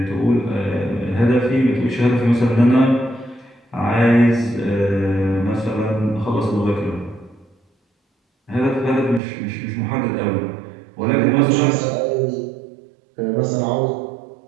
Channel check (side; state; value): left; drops out; at 9.2 s